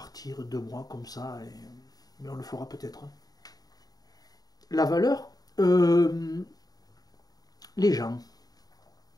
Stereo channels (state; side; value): late; right; 0.18 ms